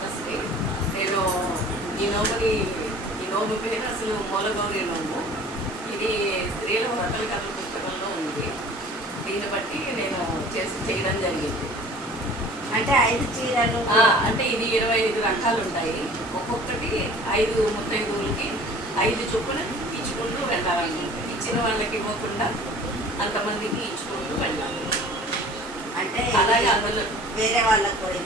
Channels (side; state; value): both; normal; correlation 0.47